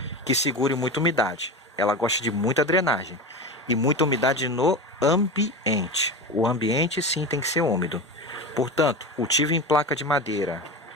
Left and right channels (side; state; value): both; normal; correlation 0.25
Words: que segure muita umidade. Ela gosta de muita drenagem e muita umidade no ambiente. O ambiente sim tem que ser úmido. Portanto, cultivo em placa de madeira,